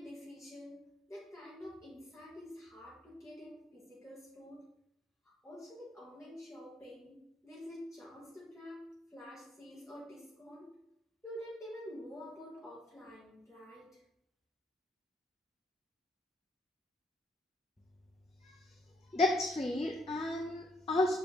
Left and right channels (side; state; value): both; normal; correlation 0.71